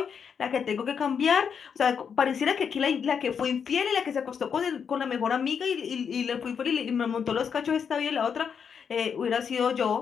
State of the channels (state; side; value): quieter; right; 6.9 dB